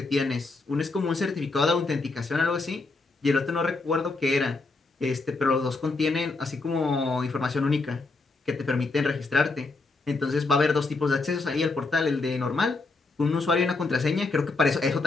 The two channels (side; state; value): right; quieter; 3.6 dB